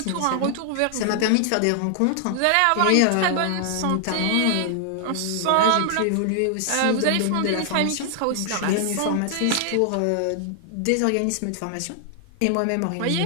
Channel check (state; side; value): different; both; correlation 0.00